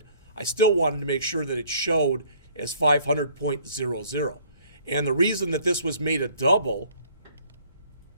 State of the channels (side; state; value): both; inverted; correlation -0.58